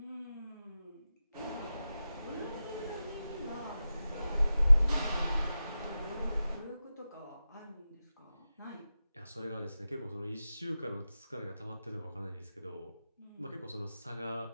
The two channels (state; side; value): inverted; both; correlation -0.93